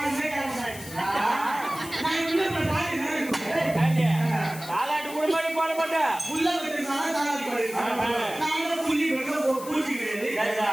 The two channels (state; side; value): noise; left; hiss, 14 dB below the sound